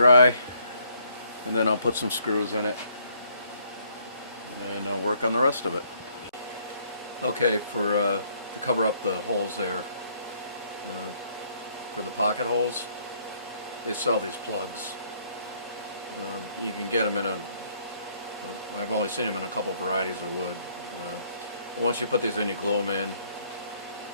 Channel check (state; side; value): inverted; both; correlation -0.66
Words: and then I'll put some screws in it, and I'll work on the rest of it. Okay, to cover up the holes there, for the pocket holes, they sell these plugs. You can get them I've only seen them in a couple varieties of wood. Once you put these in, you glue them in,